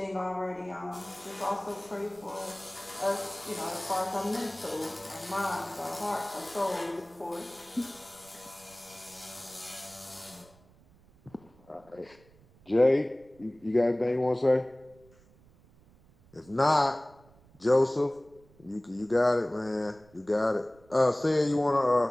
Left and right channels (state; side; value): noise; right; rumble, 28 dB below the sound